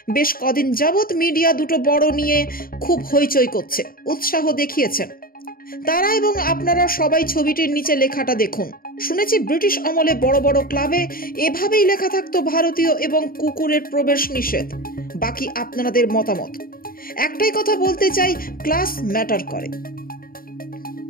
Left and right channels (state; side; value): late; right; 0.42 ms